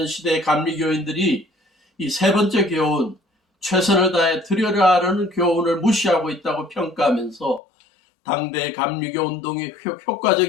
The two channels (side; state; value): right; drops out; at 7.6 s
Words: 시대의 감리교인들이 이 세 번째 교훈, 최선을 다해 드려라라는 교훈을 무시하고 있다고 평가하면서 당대의 감리교 운동이